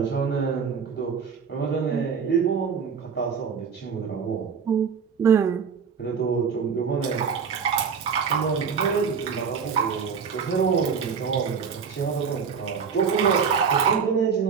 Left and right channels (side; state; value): left; quieter; 6.3 dB